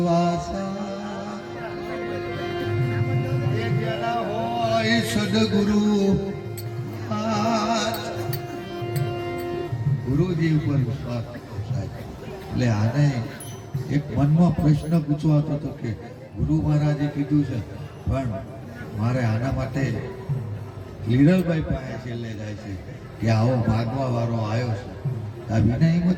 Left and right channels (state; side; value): identical; both; correlation 1.00